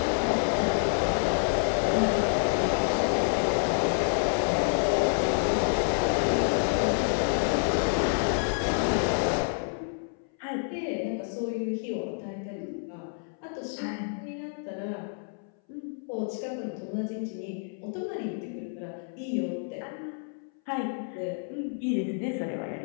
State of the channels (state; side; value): silent; right; 59 dB below the other